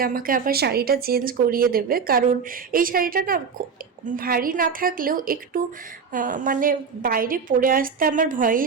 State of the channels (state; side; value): quieter; left; 5.9 dB